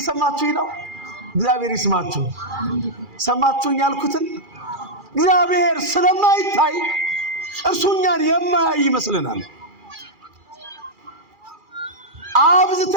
ነው? እግዚአብሔር ይስማችሁ። ሰማችሁኝ ያልኩትን? እግዚአብሔር ስለማይታይ እርሱ እኛን የማያይ ይመስለናል።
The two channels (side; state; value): left; late; 2.4 ms